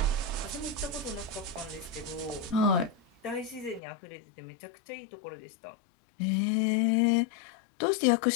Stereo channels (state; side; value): drops out; right; at 3.8 s